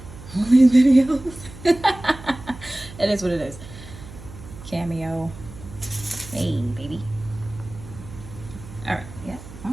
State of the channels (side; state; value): right; noise; hum, 16 dB below the sound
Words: All these videos. It is what it is. Cameo. Hey, baby. All right. Yeah.